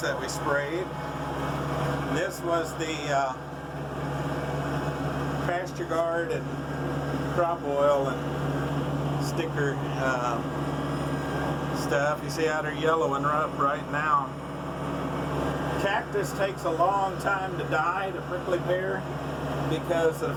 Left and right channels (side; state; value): both; identical; correlation 1.00